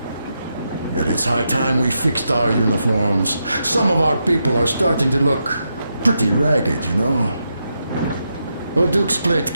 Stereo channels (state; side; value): inverted; both; correlation -0.84